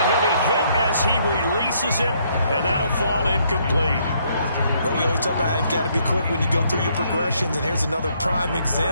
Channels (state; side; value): inverted; both; correlation -0.70